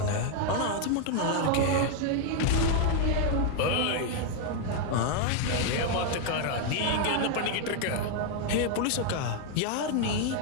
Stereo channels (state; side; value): different; both; correlation 0.01